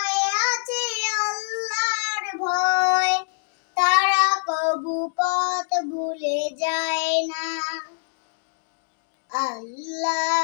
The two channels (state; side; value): silent; right; digital silence